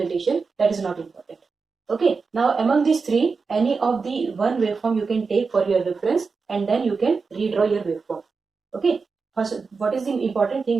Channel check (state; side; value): quieter; left; 4.7 dB